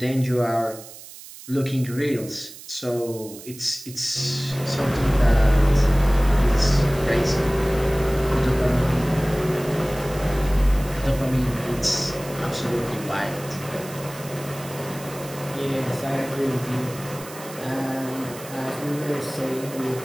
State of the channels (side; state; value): right; noise; hiss, 16 dB below the sound